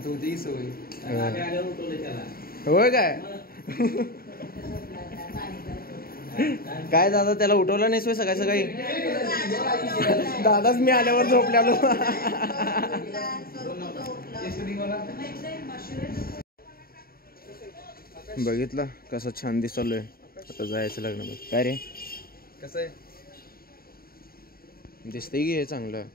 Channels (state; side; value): late; right; 0.43 ms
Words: होती सवय. होय काय काय दादा त्याला उठवलं नाही सकाळी. दादाच मी आल्यावर झोपल्यालो. बघितलं कसं छान दिसलोय. आता जायचं लग्न. काय रे कसं आहे दिसतंय की हे चांगलं.